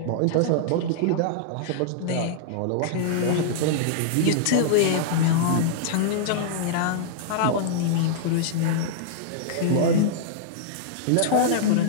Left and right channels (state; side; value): different; both; correlation -0.02